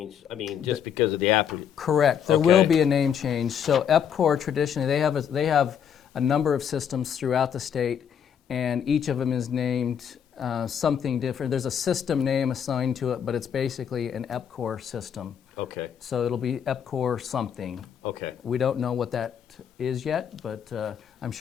I mean, just because of the app. Correct. There will be a name change. So EPCOR traditionally they have a number of systems throughout the state, and each of them is named something different. There's a system name assigned to it, but it's basically an EPCOR system. Okay. So it'll be EPCOR something. Okay. We don't know what that is yet, but I'm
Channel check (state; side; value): quieter; right; 8.3 dB